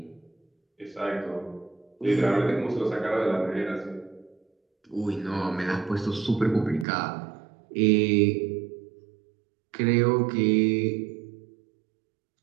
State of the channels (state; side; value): drops out; left; at 6.9 s